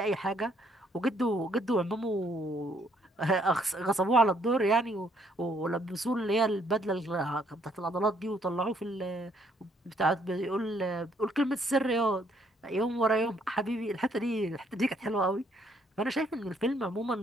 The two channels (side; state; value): both; normal; correlation 0.68